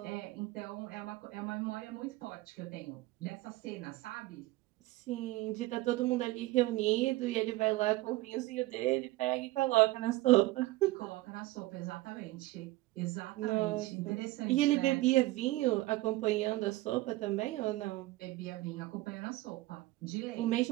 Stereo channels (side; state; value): left; quieter; 18.9 dB